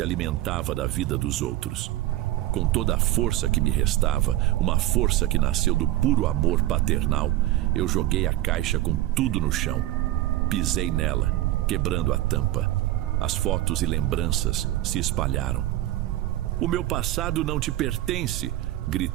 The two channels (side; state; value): left; quieter; 15.2 dB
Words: alimentava da vida dos outros. Com toda a força que me restava, uma força que nasceu do puro amor paternal, eu joguei a caixa com tudo no chão. Pisei nela, quebrando a tampa. As fotos e lembranças se espalharam. O meu passado não te pertence,